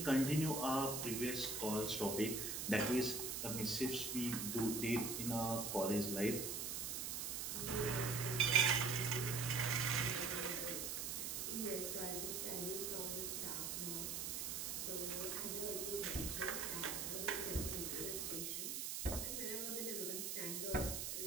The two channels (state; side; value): noise; right; hiss, 2 dB below the sound